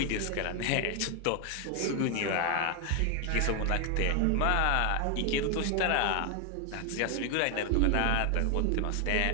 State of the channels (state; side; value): different; both; correlation 0.01